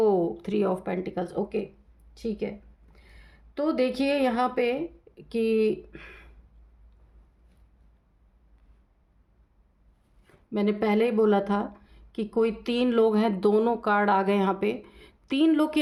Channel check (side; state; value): both; identical; correlation 1.00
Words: 3 ऑफ पेंटिकल्स, ओके ठीक है। तो देखिए यहाँ पे कि मैंने पहले ही बोला था कि कोई 3 लोग हैं, दोनों कार्ड आ गए यहाँ पे। 3 लोग की